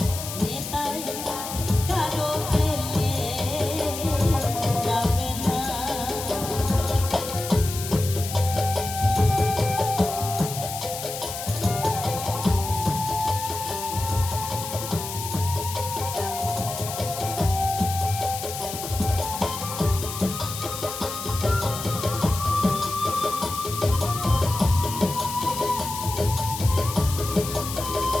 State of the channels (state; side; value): noise; left; hiss, 8 dB below the sound